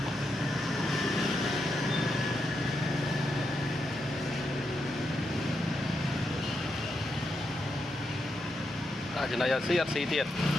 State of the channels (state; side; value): normal; both; correlation 0.84